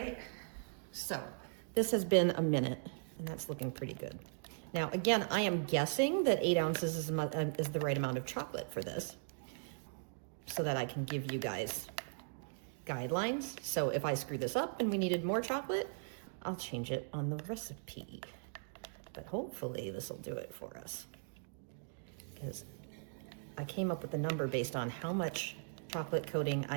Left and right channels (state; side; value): silent; left; digital silence